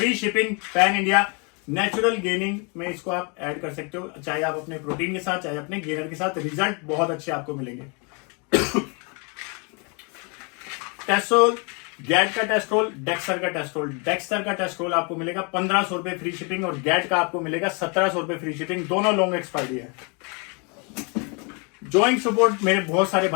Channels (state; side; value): quieter; right; 33.7 dB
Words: shipping, pan India. Natural gaining में इसको आप ऐड कर सकते हो, चाहे आप अपने प्रोटीन के साथ, चाहे अपने गेनर के साथ। रिजल्ट बहुत अच्छे आपको मिलेंगे। टेस्ट्रोल, गैट का टेस्ट्रोल, डेक्सर का टेस्ट्रोल। डेक्सर का टेस्ट्रोल आपको मिलेगा 1500 रुपए फ्री शिपिंग, और गैट का आपको मिलेगा 1700 रुपए फ्री शिपिंग। दोनों लॉन्ग एक्सपायरी है। जॉइंट सपोर्ट, मेरे बहुत सारे